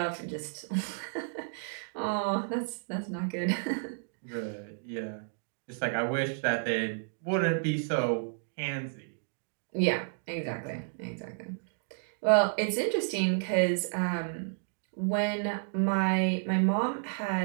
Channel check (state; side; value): silent; left; digital silence